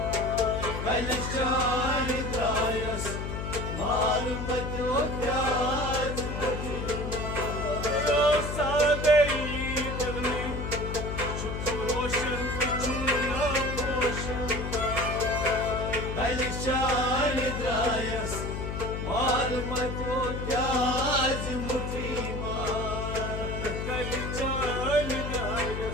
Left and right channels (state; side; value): noise; left; hum, 4 dB below the sound